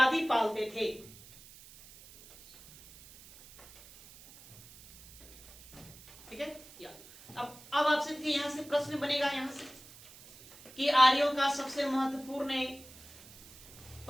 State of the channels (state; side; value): noise; right; hiss, 20 dB below the sound